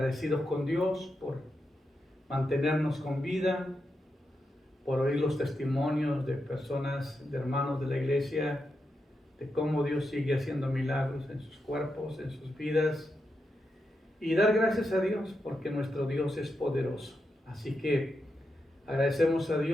con Dios por mantenernos con vida, por oír los testimonios de personas, de hermanos de la iglesia, de cómo Dios sigue haciendo milagros en sus cuerpos, en sus vidas, y dar gracias a Dios porque nuestro Dios es poderoso. Así que agradecemos a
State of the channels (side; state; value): both; normal; correlation 0.86